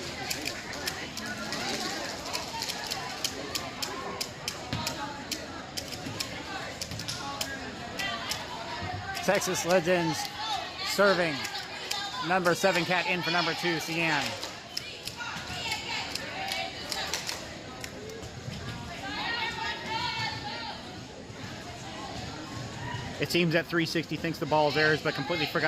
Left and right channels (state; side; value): identical; both; correlation 1.00